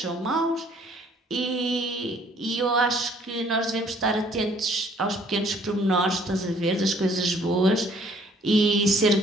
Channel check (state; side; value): normal; both; correlation 0.60